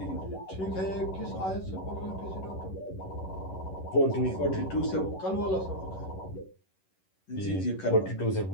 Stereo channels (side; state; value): right; late; 11 ms